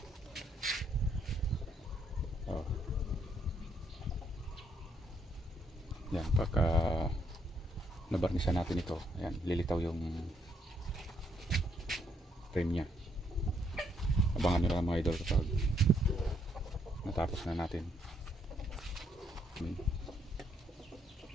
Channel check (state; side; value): normal; both; correlation 0.72